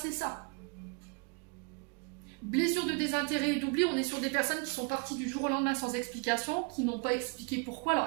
ça. Blessure de désintérêt et d'oubli, on est sur des personnes qui sont parties du jour au lendemain sans explication, qui n'ont pas expliqué pourquoi. Alors,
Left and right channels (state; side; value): quieter; left; 32.9 dB